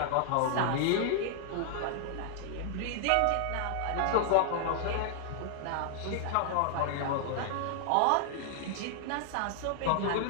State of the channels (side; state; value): both; different; correlation -0.01